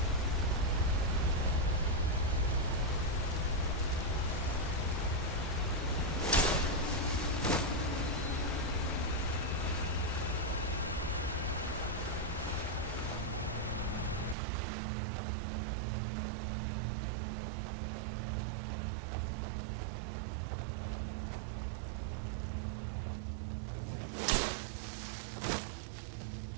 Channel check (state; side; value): drops out; left; at 14.4 s